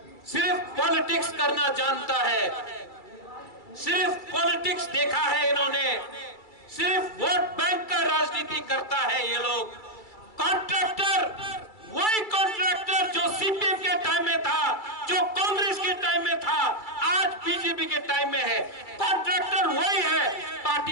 सिर्फ पॉलिटिक्स करना जानता है, सिर्फ पॉलिटिक्स देखा है इन्होंने, सिर्फ वोट बैंक का राजनीति करता है ये लोग। कॉन्ट्रैक्टर, वही कॉन्ट्रैक्टर जो सीपीएम के टाइम में था, जो कांग्रेस के टाइम में था, आज बीजेपी के टाइम में है। कॉन्ट्रैक्टर वही है,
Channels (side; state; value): right; late; 2.3 ms